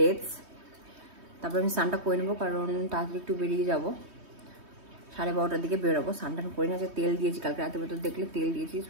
তারপর আমি স্নানটা করে নেবো, কারণ তাড়াতাড়ি একটু বেরিয়ে যাবো, 12:30টার দিকে বেরোবো। স্নানটা করে নিয়ে আজকে তেল দিয়েছি, কালকে রাতের ভেতর দেখলে তেল দিয়েছি,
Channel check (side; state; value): left; late; 3.2 ms